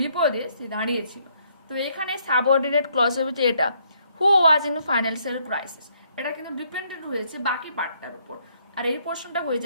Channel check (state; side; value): inverted; both; correlation -0.70